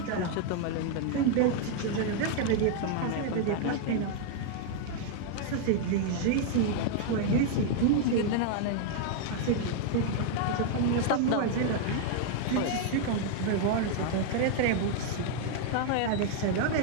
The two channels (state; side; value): different; both; correlation 0.00